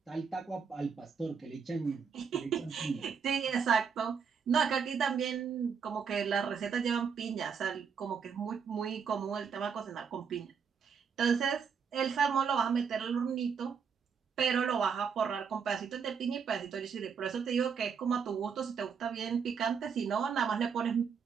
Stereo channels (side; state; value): left; quieter; 6.4 dB